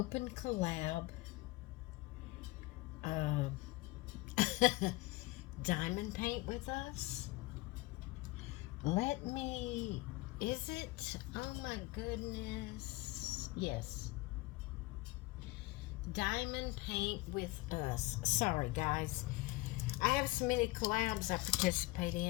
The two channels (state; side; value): quieter; right; 21.0 dB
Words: collab Diamond Paint with Us. Is it? Oh my goodness. Yes. Diamond Paint with Us. Sorry guys. I have so many collabs I participate